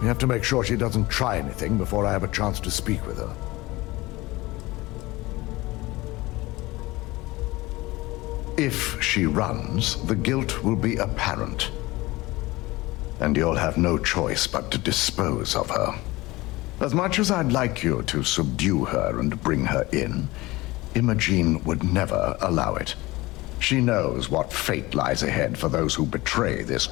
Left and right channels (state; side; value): quieter; right; 20.5 dB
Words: We have to make sure she doesn't try anything before I have a chance to speak with her. If she runs, the guilt will be apparent. And you'll have no choice but to dispose of her. As much as I'd like you to subdue her and bring her in, Imogene would never allow it. She knows what fate lies ahead for those who betray this